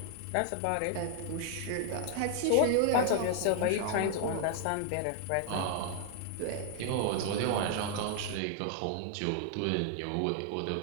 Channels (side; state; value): both; different; correlation 0.00